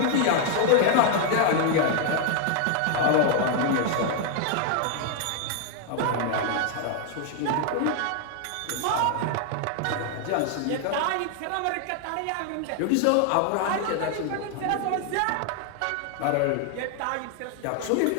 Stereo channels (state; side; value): different; both; correlation 0.00